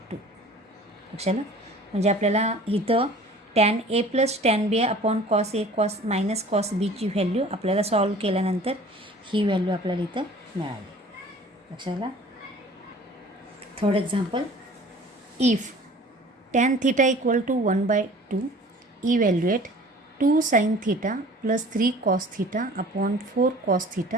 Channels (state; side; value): normal; both; correlation 0.47